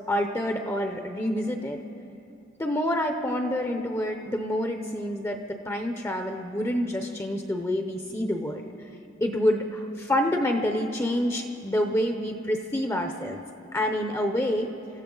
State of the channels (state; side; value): normal; both; correlation 0.73